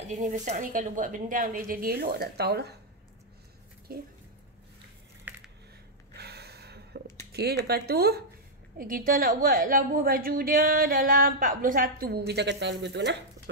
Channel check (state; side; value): normal; both; correlation -0.04